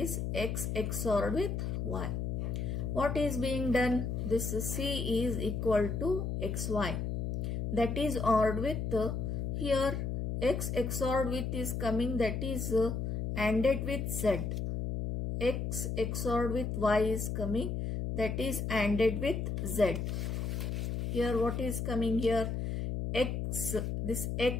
x XOR with y. What is being done? This c is equal to xy. That is ORed with, here x XOR with is coming, that is ANDed with z. X XOR with y is coming, that is ANDed with z. Here what is coming here? X, this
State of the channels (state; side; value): noise; left; hum, 2 dB below the sound